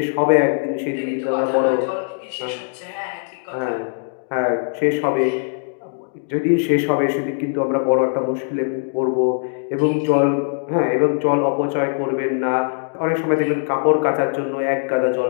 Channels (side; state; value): right; silent; digital silence